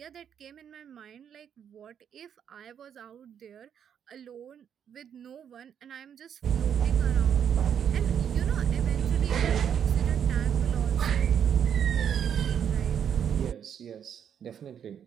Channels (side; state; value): left; quieter; 8.4 dB